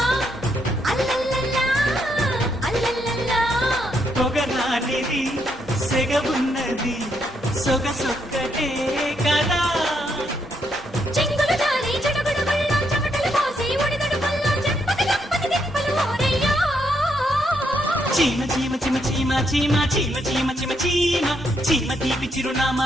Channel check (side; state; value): both; normal; correlation 0.76